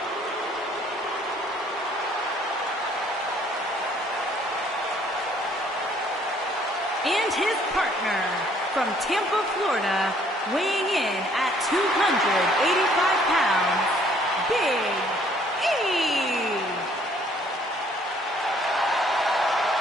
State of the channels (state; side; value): normal; both; correlation 0.62